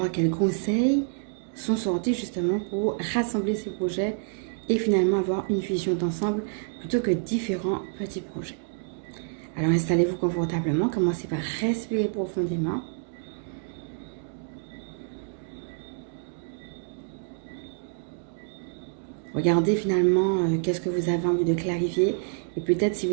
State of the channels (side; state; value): left; silent; digital silence